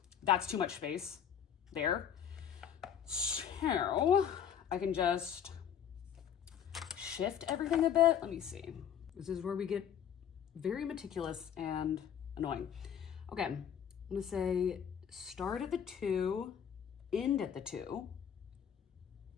too much space there. So I can just shift everything a bit. Let me see. This is where we get very meticulous and annoying. Okay, I'm gonna say start at the 2, end at the 2.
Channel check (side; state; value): right; quieter; 8.7 dB